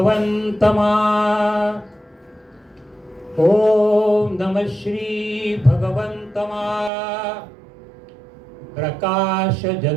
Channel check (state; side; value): drops out; left; at 6.9 s